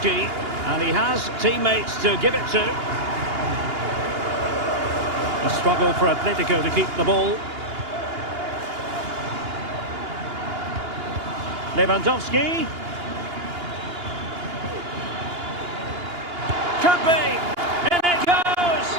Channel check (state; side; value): late; left; 2.8 ms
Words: and he has teammates to give it to. A struggle for Atletico to keep the ball. Lewandowski. Could be. In it goes